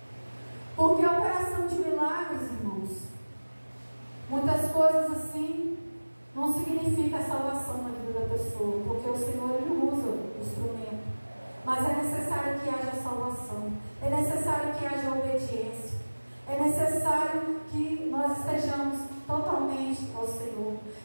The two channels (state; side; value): inverted; both; correlation -1.00